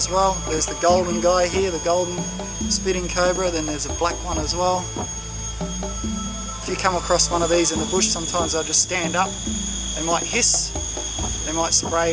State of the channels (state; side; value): identical; both; correlation 1.00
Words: well. There's the golden guy here, the golden spitting cobra, then there's a black one as well. If you come across one of these in the bush, sometimes they'll just stand up. They might hiss, they might